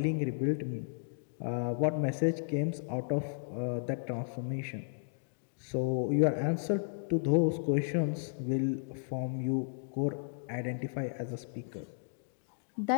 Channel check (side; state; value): right; silent; digital silence